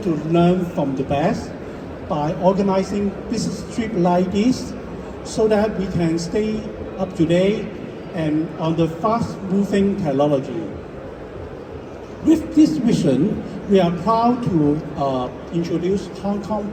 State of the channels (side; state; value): both; identical; correlation 1.00